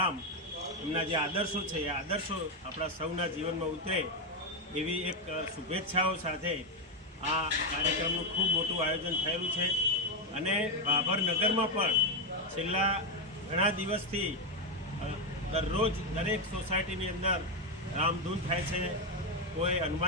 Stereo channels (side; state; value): both; normal; correlation 0.06